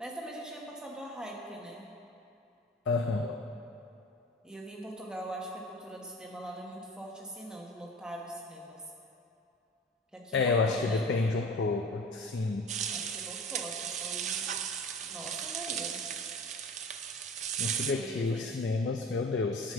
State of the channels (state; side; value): normal; both; correlation 0.39